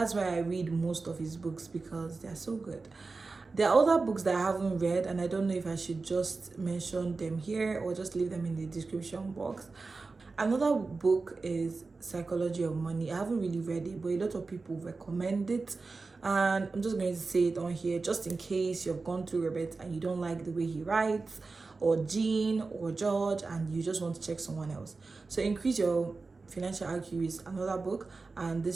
why I read most of his books, because they're so good. There are other books that I haven't read, and I don't know if I should just mention them here or just leave them in the description box. Another book is Psychology of Money. I haven't really read it, but a lot of people recommend it, and I'm just going to say it on here just in case you've gone through Robert and you don't like the way he writes, or Jean or George, and you just want to check someone else. So Increase Your Financial IQ is another book, and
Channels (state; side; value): quieter; left; 4.0 dB